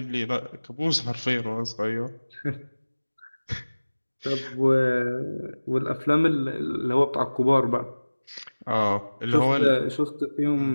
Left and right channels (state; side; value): inverted; both; correlation -1.00